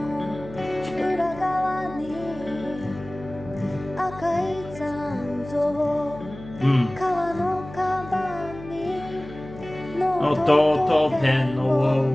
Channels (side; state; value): left; noise; hum, 15 dB below the sound